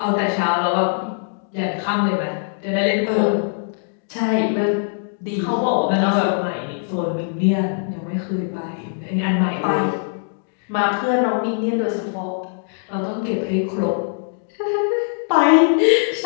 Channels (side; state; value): right; silent; digital silence